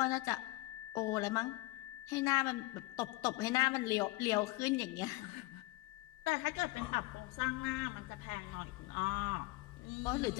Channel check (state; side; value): quieter; right; 21.5 dB